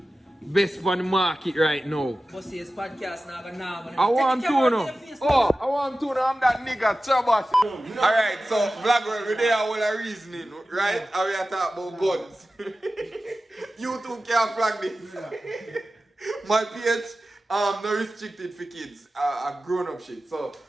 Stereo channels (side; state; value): both; normal; correlation 0.95